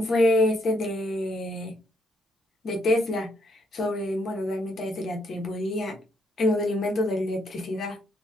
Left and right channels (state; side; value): normal; both; correlation 0.73